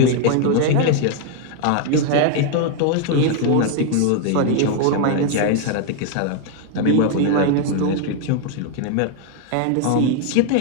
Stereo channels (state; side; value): different; both; correlation 0.00